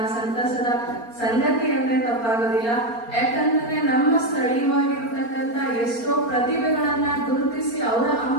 ಸಂತಸದ ಸಂಗತಿ ಅಂದ್ರೆ ತಪ್ಪಾಗೋದಿಲ್ಲ. ಯಾಕಂದ್ರೆ ನಮ್ಮ ಸ್ಥಳೀಯವಾಗಿರ್ತಕ್ಕಂಥ ಎಷ್ಟೋ ಪ್ರತಿಭೆಗಳನ್ನ ಗುರುತಿಸಿ ಅವರ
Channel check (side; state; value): right; late; 4.3 ms